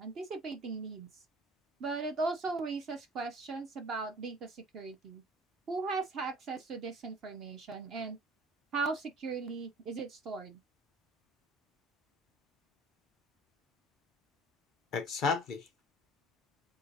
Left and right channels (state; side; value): normal; both; correlation 0.47